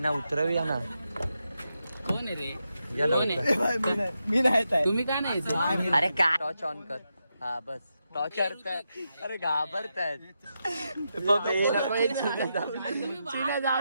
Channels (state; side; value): inverted; both; correlation -0.86